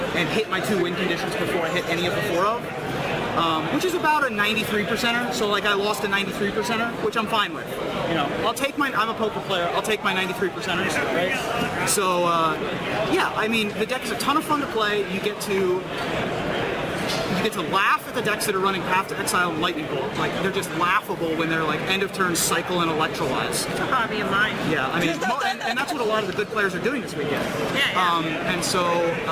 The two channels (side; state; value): both; identical; correlation 1.00